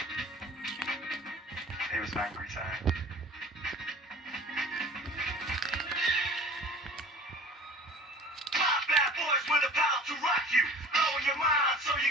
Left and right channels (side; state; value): both; normal; correlation 0.43